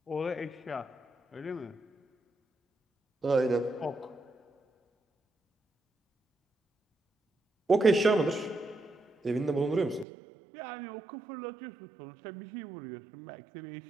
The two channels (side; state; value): left; drops out; at 10.1 s